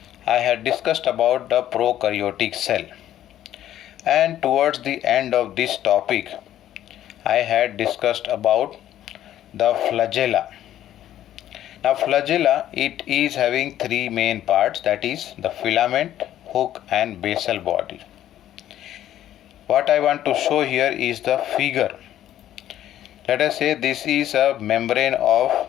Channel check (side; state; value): right; quieter; 12.1 dB